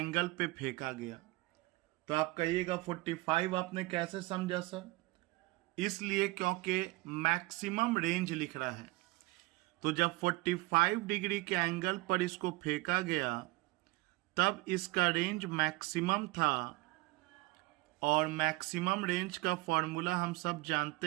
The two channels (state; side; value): quieter; left; 22.3 dB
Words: पे फेंका गया, तो आप कहिएगा 45 आपने कैसे समझा सर? इसलिए क्योंकि मैक्सिमम रेंज लिख रहा है। तो जब 45 डिग्री के एंगल पर इसको फेंका गया तब इसका रेंज मैक्सिमम था, और मैक्सिमम रेंज का फॉर्मूला हम सब